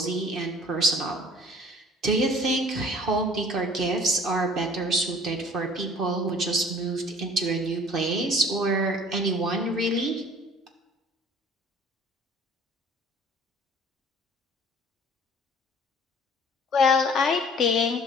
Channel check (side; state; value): both; normal; correlation 0.50